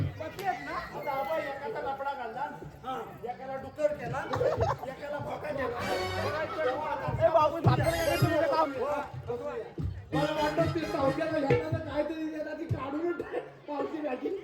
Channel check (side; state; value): both; identical; correlation 1.00